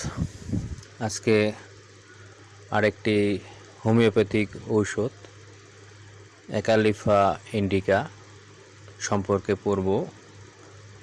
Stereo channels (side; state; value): both; identical; correlation 1.00